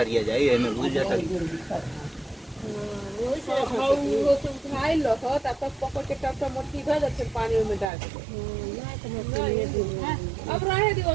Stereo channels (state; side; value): drops out; left; at 7.9 s